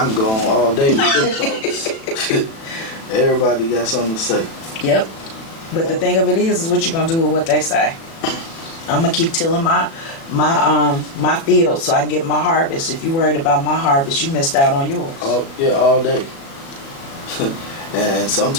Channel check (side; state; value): right; late; 36 ms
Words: can go on all day with this thoughts. Everybody got something to say. Yep. But the thing of it is what you're gonna do with what they say. I'm gonna keep tilling my field so I can get my harvest. If you're worried about my harvest, you missed out on yours. All day. And